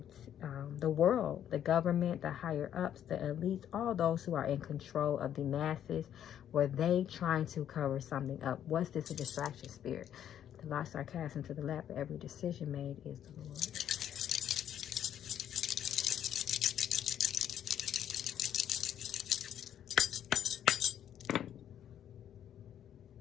the world, the government, the higher ups, the elites, all those who are in control of the masses, were they trying to cover something up? Was this a distraction spirit? The lost are cast into the lap of every decision made is the Lord.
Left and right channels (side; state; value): right; quieter; 10.1 dB